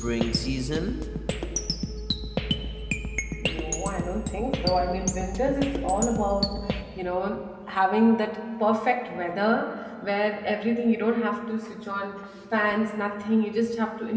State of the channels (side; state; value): both; identical; correlation 1.00